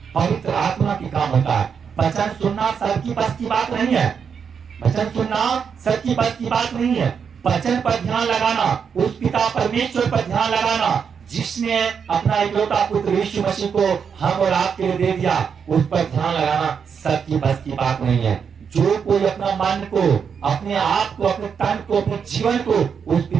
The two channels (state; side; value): quieter; left; 6.7 dB